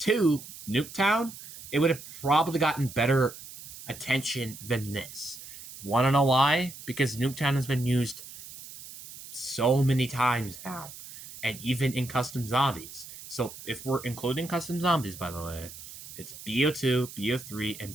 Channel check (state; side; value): noise; right; hiss, 15 dB below the sound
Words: Nuketown, it would have probably gotten better attention than this. Want to know why? Because Nuketown has been used so many times now, and even in custom zombies. So if we're including custom zombies, by the way, it's BO2, BO3,